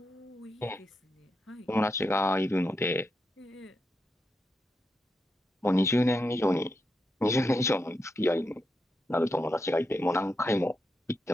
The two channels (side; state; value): both; normal; correlation 0.85